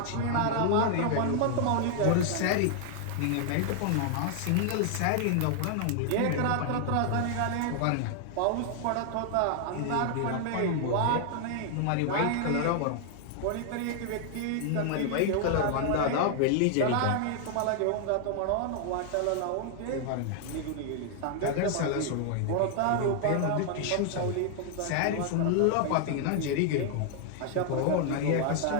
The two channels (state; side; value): different; both; correlation 0.00